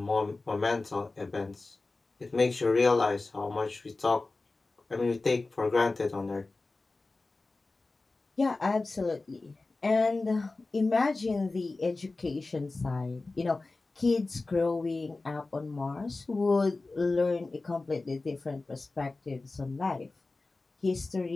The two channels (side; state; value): right; quieter; 3.4 dB